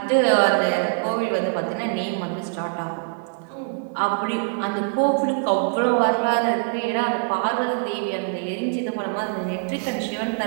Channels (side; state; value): left; quieter; 38.4 dB